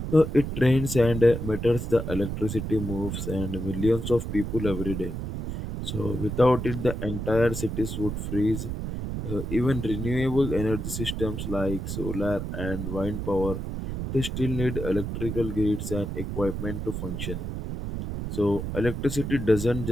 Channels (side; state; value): right; noise; rumble, 5 dB below the sound